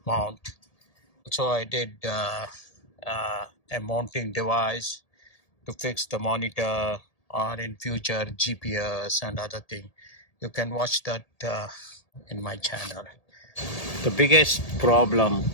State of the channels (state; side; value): late; right; 1.8 ms